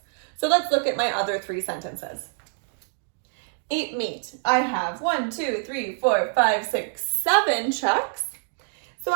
So let's look at my other 3 sentences. Eat meat. I have 1, 2, 3, 4, 5, 6, 7 checks. So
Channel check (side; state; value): left; silent; 61 dB below the other